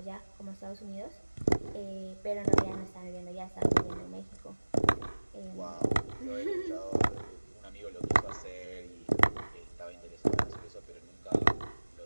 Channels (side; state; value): both; inverted; correlation -1.00